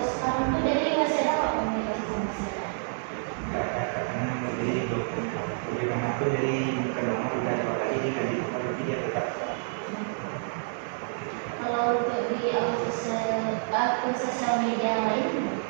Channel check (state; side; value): silent; left; 59 dB below the other